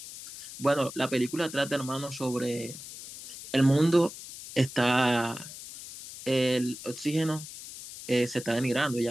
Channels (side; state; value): left; noise; hiss, 13 dB below the sound